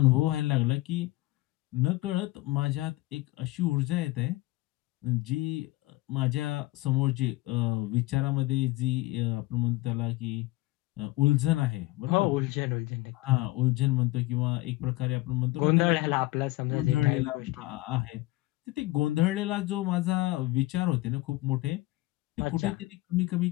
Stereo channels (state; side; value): quieter; right; 19.3 dB